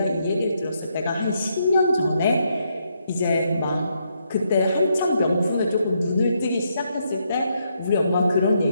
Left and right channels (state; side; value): inverted; both; correlation -0.77